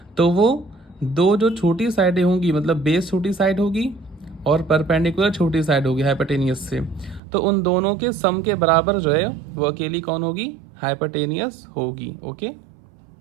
तो वो दो जो छोटी साइडें होंगी, मतलब बेस छोटी साइड होगी और परपेंडिकुलर छोटी साइड होगी हाइपोटेनियस से, तो उन दोनों के सम के बराबर जो है वो अकेली कौन होगी, हाइपोटेनियस होगी। ओके,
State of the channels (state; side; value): drops out; left; at 7.2 s